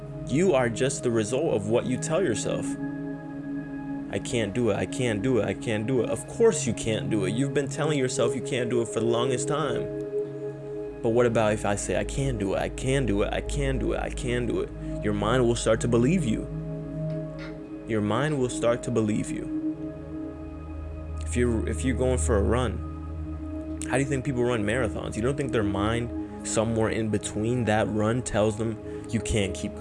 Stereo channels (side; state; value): both; identical; correlation 1.00